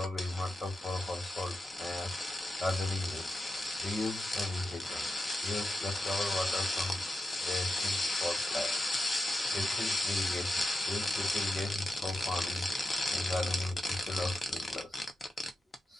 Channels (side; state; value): both; normal; correlation 0.89